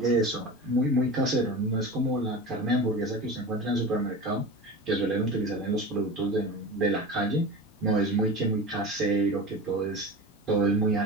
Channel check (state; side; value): normal; both; correlation 0.31